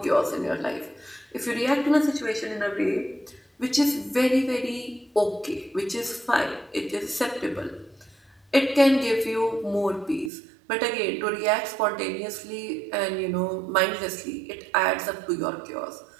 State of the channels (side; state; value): left; drops out; at 10.3 s